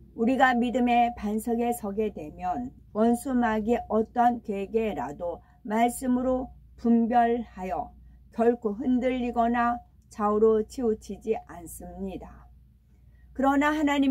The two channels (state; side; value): identical; both; correlation 1.00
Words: 우리가 믿음의 반석에 서게 되면 원수 마귀의 어떠한 괴계라도 말씀으로 분별하여 결코 흔들리거나 좌우로 치우치지 않습니다. 그러나